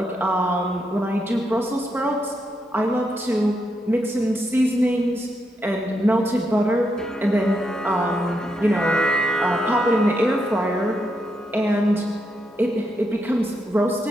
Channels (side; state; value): both; normal; correlation 0.81